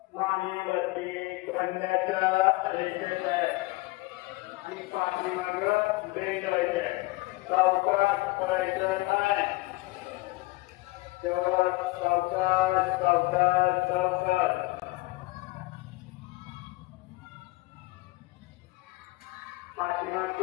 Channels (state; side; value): quieter; right; 21.8 dB